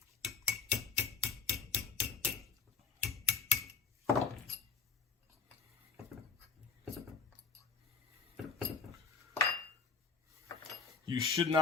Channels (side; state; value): right; quieter; 5.3 dB